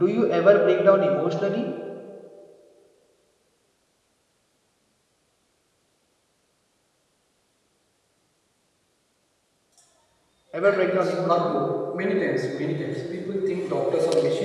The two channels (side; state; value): both; identical; correlation 1.00